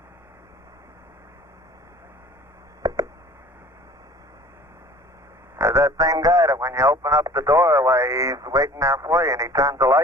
There's that same guy that when you open up the doorway, he's waiting there for you and he turns the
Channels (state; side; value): normal; both; correlation 0.46